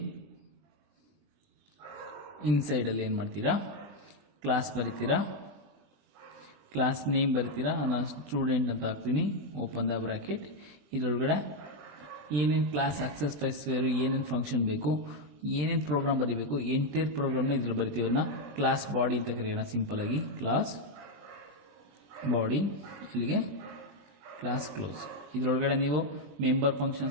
ಇನ್ಸೈಡಲ್ಲಿ ಏನು ಮಾಡ್ತೀರಾ, ಕ್ಲಾಸ್ ಬರಿತೀರಾ, ಕ್ಲಾಸ್ ನೇಮ್ ಬರಿತೀರಾ, ನಾನು ಸ್ಟೂಡೆಂಟ್ ಅಂತ ಹಾಕ್ತೀನಿ, ಓಪನ್ ದ ಬ್ರಾಕೆಟ್. ಇದರೊಳಗಡೆ ಏನೇನು ಕ್ಲಾಸ್ ಆಕ್ಸೆಸ್ ಫೈಲ್ಸ್, ಏನೇನು ಫಂಕ್ಷನ್ ಬೇಕು, ಏನೇನು ಪ್ರೋಗ್ರಾಮ್ ಬರೀಬೇಕು, ಎಂಟೈರ್ ಪ್ರೋಗ್ರಾಮ್ನ ಇದ್ರಲ್ಲಿ ಬರಿತೀವಿ. ಅದನ್ನ ಕ್ಲಾಸ್ ಬಾಡಿ ಅಂತ ಕರೆಯೋಣ ಸಿಂಪಲ್ ಆಗಿ. ಕ್ಲಾಸ್ ಬಾಡಿ, ಇಲ್ಲಿಗೆ ಕ್ಲಾಸ್ ಕ್ಲೋಸ್. ಇದರೊಳಗಡೆ ನೀವು ಮೆಂಬರ್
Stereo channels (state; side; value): late; left; 20 ms